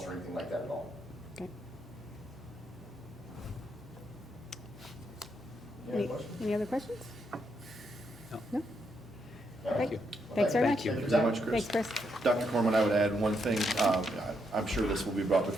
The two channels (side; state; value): both; normal; correlation 0.79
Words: or anything like that at all. Okay. Any other questions? Any other questions? No? Thank you. Thanks very much. Thank you very much, Chris. Thanks, Chris. Dr. Corman, I would add one thing. I'm sure this will be brought